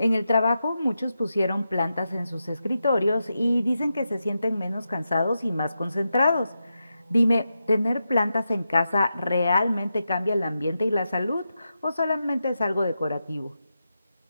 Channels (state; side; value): inverted; both; correlation -0.88